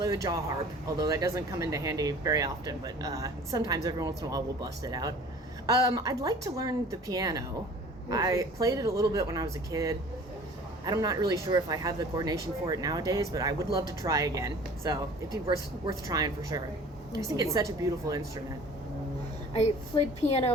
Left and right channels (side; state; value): both; normal; correlation 0.47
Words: the jaw harp, although that doesn't come into handy very often, but sometimes every once in a while we'll bust it out. I'd like to learn the piano. I played it a little bit when I was a kid. I'm not really sure if I have the coordination for it nowadays, but I would love to try again, so it'd be worth trying for sure. I just think it's such a beautiful instrument. I played